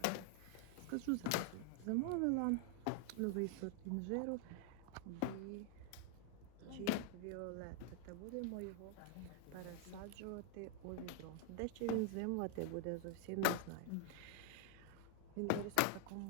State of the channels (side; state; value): both; different; correlation 0.00